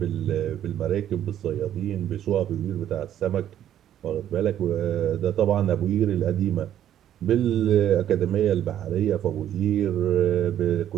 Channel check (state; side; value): quieter; left; 11.0 dB